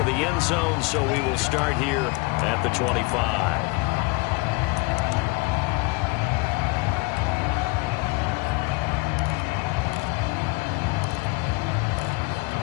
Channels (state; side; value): quieter; right; 26.2 dB